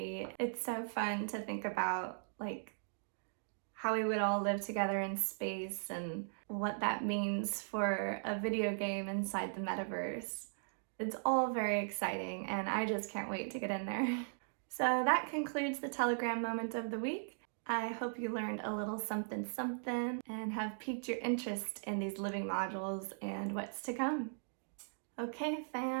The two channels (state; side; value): silent; left; digital silence